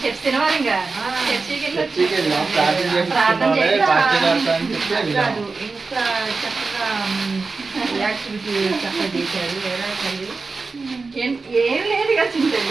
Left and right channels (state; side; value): quieter; left; 4.1 dB